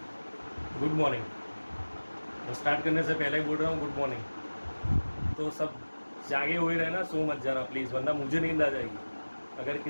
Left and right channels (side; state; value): both; inverted; correlation -1.00